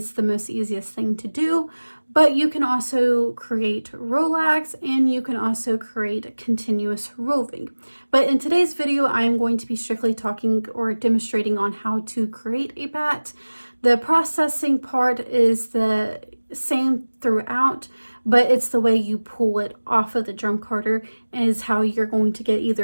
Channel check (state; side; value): inverted; both; correlation -1.00